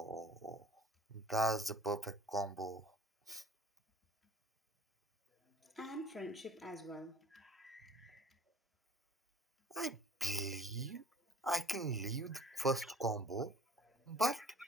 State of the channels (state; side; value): normal; both; correlation 0.49